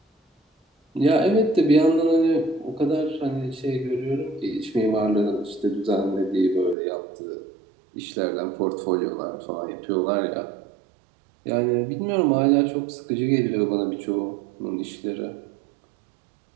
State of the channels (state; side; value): drops out; left; at 6.8 s